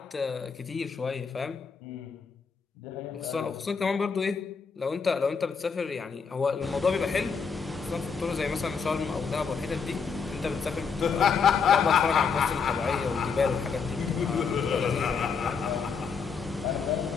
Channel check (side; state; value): right; quieter; 5.7 dB